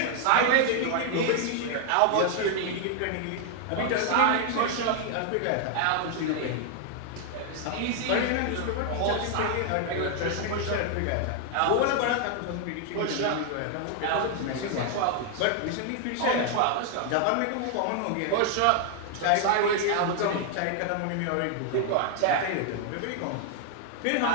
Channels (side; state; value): both; different; correlation 0.00